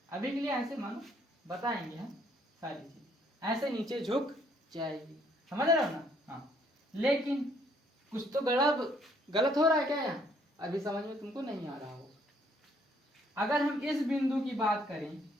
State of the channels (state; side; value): normal; both; correlation 0.66